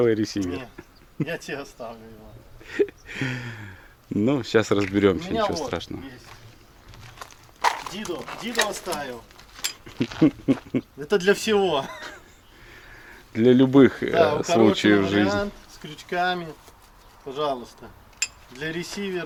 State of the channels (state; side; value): identical; both; correlation 1.00